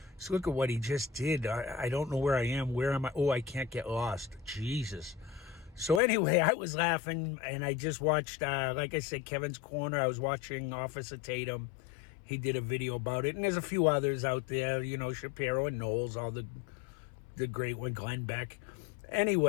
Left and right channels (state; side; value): drops out; right; at 6.0 s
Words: So look at what he just did. I don't know where I am. Where am I? Oh, I can't get lost. Jesus. So anyway, I was laughing, and I just watched, like I said, Kevin's Corner. I was watching Officer Tatum. He did a video about it, and there's a few others out there, Shapiro and Knowles, all the great one, Glen Beck.